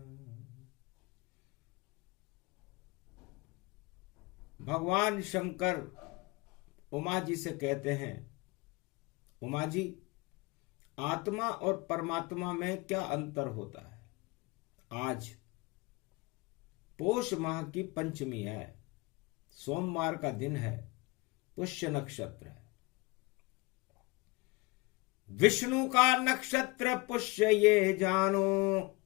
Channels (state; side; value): quieter; right; 24.4 dB